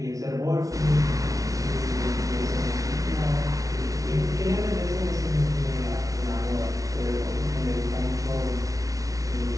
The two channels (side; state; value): left; late; 0.17 ms